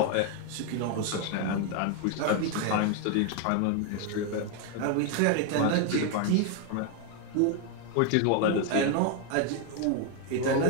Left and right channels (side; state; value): both; different; correlation 0.01